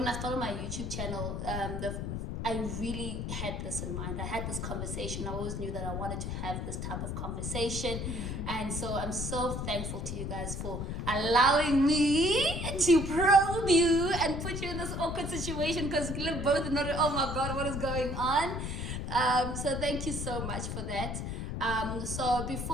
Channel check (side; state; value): left; noise; rumble, 4 dB below the sound